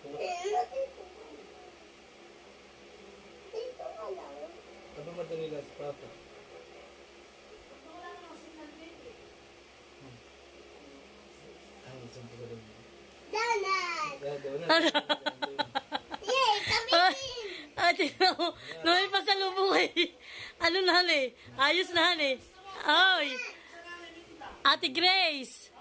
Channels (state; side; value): identical; both; correlation 1.00